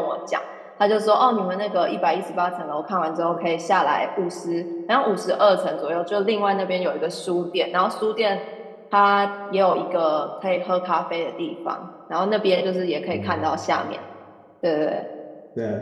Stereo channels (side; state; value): both; identical; correlation 1.00